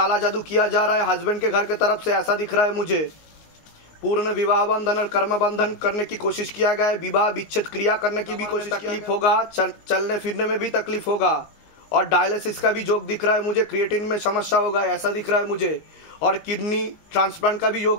जादू किया जा रहा है हस्बैंड के घर के तरफ से, ऐसा दिख रहा है मुझे। पूर्ण विवाह बंधन और कर्म बंधन करने की कोशिश किया गया है, विवाह विच्छेद क्रिया करने की भी कोशिश, तकलीफ होगा, चलने फिरने में भी तकलीफ होगा, और डायलिसिस का भी योग दिख रहा है मुझे, क्रिएटिन में समस्या होगा ऐसा दिख रहा है मुझे, और किडनी ट्रांसप्लांट का भी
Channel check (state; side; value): late; right; 19 ms